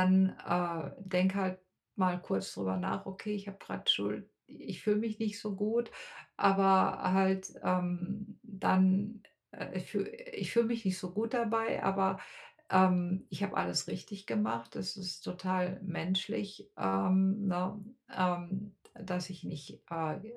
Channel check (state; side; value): identical; both; correlation 1.00